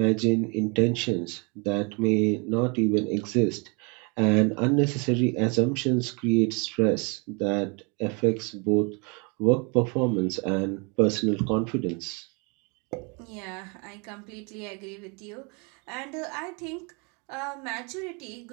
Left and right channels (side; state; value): left; quieter; 32.2 dB